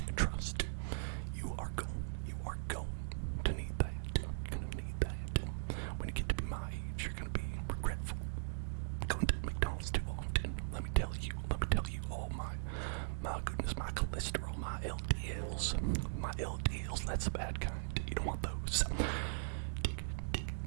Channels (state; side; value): silent; left; digital silence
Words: You are going to need that. You're gonna need that. When you get to be my age, you're gonna be regretful. Going to McDonald's too often. Let me tell you, all my goodness, my cholesterol, my LDLs, that's the bad kind. You don't want those.